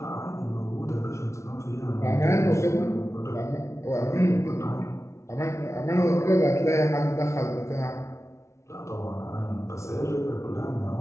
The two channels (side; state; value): right; late; 0.14 ms